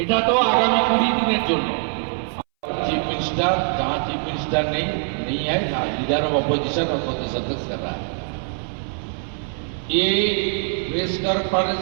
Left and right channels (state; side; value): silent; left; 61 dB below the other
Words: এটা তো আগামী 20 দিনের জন্য। चीफ मिनिस्टर जहां चीफ मिनिस्टर नहीं है, लीडर ऑफ अपोजिशन और प्रदेश अध्यक्ष कर रहा है। ये प्रेस कॉन्फ्रेंस